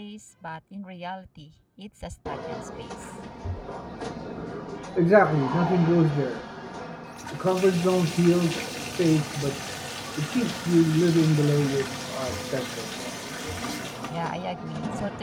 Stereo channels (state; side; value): identical; both; correlation 1.00